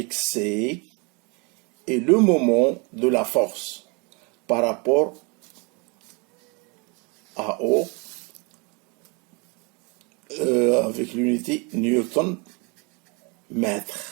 C est le moment de la force par rapport à O avec l'unité Newton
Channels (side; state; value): left; quieter; 31.0 dB